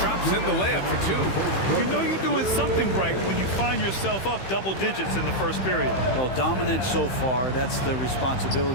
in the layup for 2. You know you're doing something right when you find yourself up double digits in the first period. Well, dominant so far. That's the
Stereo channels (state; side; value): late; right; 15 ms